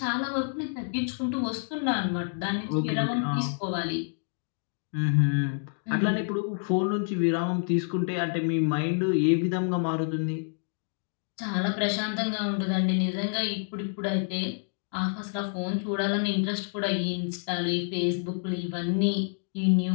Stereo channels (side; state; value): right; silent; digital silence